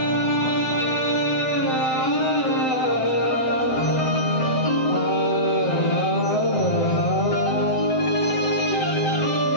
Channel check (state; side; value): late; right; 7.7 ms